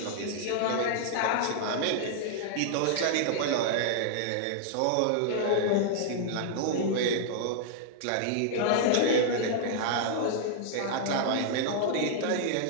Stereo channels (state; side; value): different; both; correlation -0.01